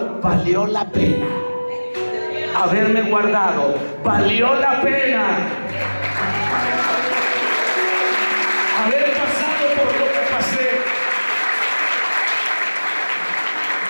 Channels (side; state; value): both; inverted; correlation -1.00